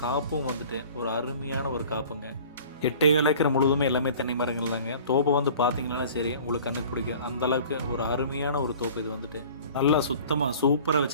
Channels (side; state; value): both; inverted; correlation -0.46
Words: காப்பும் வந்துட்டு ஒரு அருமையான ஒரு காப்புங்க. 8 ஏக்கர் முழுவதுமே எல்லாமே தென்னை மரங்கள் தாங்க. தோப்பை வந்து பார்த்தீங்கன்னா சரி உங்களுக்கு கண்ணுக்கு பிடிக்கும். அந்தளவுக்கு ஒரு அருமையான ஒரு தோப்பு இது வந்துட்டு. நல்லா சுத்தமாக சூப்பராக